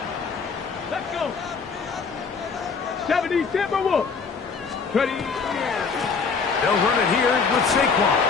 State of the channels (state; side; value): quieter; right; 5.2 dB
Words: 70 Timberwolves. 30. They'll run it here with Saquon.